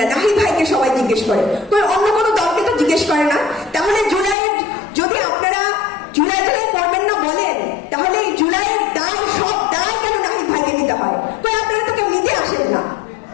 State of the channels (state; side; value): drops out; right; at 4.4 s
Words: নাহিদ ভাইকে সবাই জিজ্ঞেস করে, অন্য কোনো দলকে তো জিজ্ঞেস করে না। তাহলে জুলাইয়ের যদি আপনারা জুলাই করবেন না বলেন, তাহলে এই জুলাইয়ের দায়, সব দায় কেন নাহিদ ভাইকে নিতে হয়? আপনারা তো কেউ নিতে আসেন না।